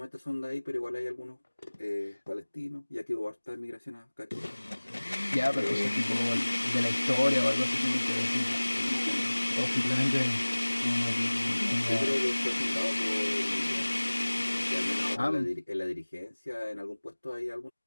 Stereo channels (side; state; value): both; inverted; correlation -1.00